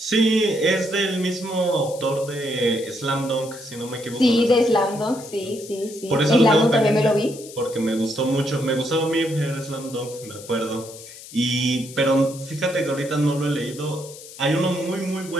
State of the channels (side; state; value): left; noise; hiss, 16 dB below the sound